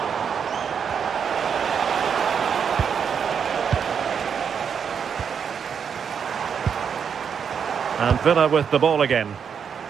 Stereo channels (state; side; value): quieter; left; 7.1 dB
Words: And Villa with the ball again.